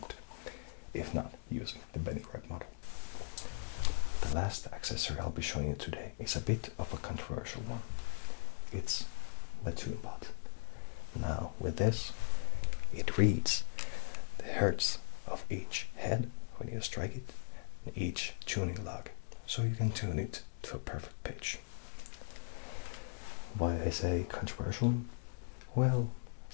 if not using the Benny Red model. The last accessory I'll be showing you today is a bit of a controversial one. It's the toon pot. Now with this, it reads the hertz of each head when you strike it, and each tuning log, so you can tune it to a perfect pitch. Why I say controversial? Well,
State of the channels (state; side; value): silent; right; digital silence